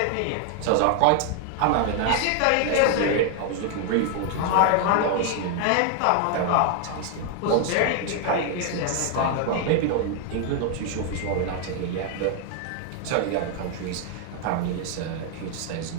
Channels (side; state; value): both; different; correlation 0.00